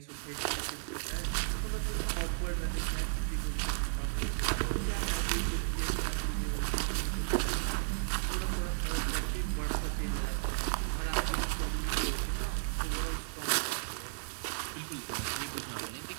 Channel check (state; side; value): silent; left; 55 dB below the other